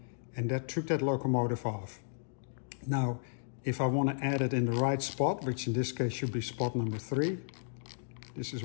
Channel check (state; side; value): silent; right; digital silence